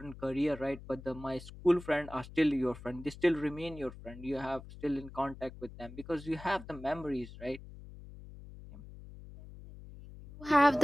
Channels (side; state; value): left; noise; hum, 15 dB below the sound